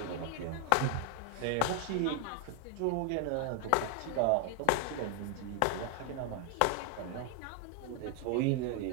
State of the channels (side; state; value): both; different; correlation 0.00